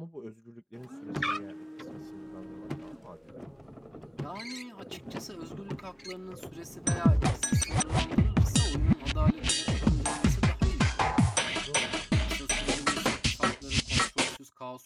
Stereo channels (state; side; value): identical; both; correlation 1.00